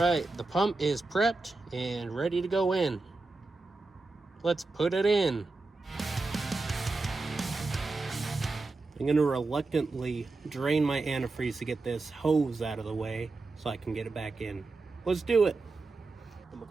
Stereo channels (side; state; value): left; quieter; 3.5 dB